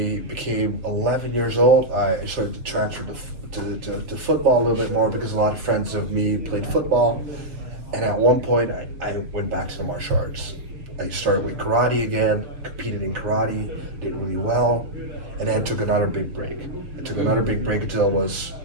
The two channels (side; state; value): left; late; 6.8 ms